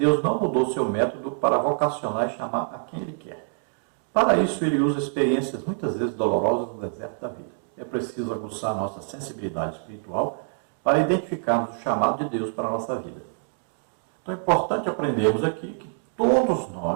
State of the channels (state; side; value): silent; left; digital silence